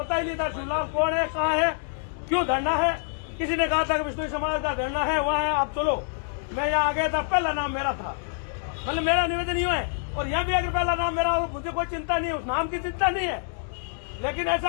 ही नहीं था शिवलाल कौन है, कहाँ है, क्यों धरना है। किसी ने कहा था कि विष्णु समाज का धरना है, वहाँ है, आप चलो। मैं यहाँ आ गया था, पहला नाम मेरा था, मतलब मेरा निवेदन ही है। और यहाँ भी अगर पहला नाम मेरा हो, मुझे कोई चिंता नहीं है, उस नाम की चिंता नहीं है। लेकिन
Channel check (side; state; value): right; silent; digital silence